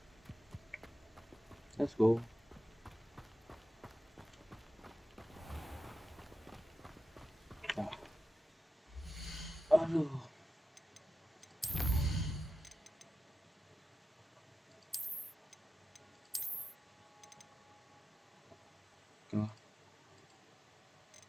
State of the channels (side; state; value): both; normal; correlation 0.92